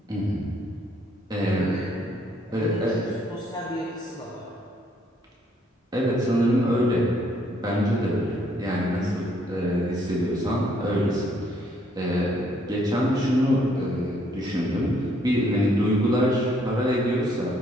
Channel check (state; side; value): normal; both; correlation 0.67